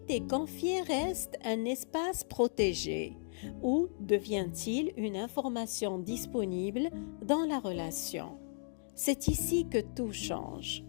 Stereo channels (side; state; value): right; silent; digital silence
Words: confié reste un espace protégé, ou devient-il une information disponible dans la relation? C'est ici que tout change.